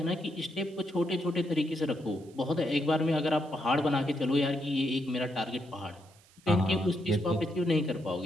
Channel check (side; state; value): right; noise; hiss, 28 dB below the sound